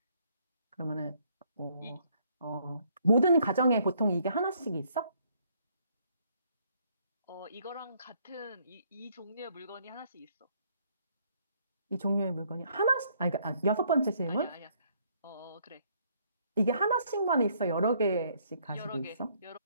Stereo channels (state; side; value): inverted; both; correlation -0.67